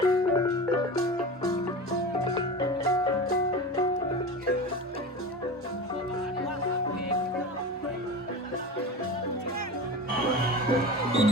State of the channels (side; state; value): both; normal; correlation 0.29